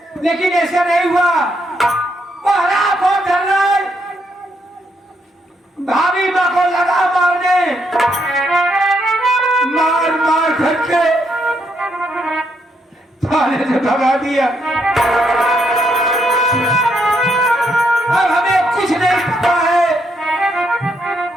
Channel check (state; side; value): normal; both; correlation 0.76